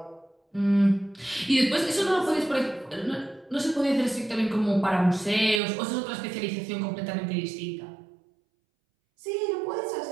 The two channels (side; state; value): left; drops out; at 5.6 s